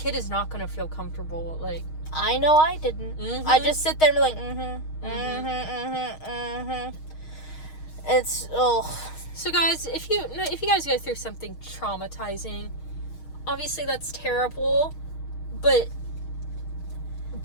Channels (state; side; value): late; right; 6.4 ms